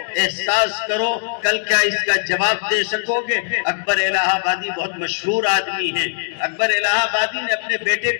احساس کرو کل کیا اس کا جواب دے سکو گے۔ اکبر الہ آبادی بہت مشہور آدمی ہیں، اکبر الہ آبادی نے اپنے بیٹے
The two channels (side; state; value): right; silent; digital silence